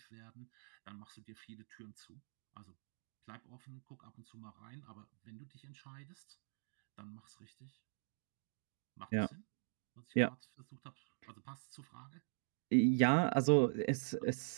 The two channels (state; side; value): silent; left; digital silence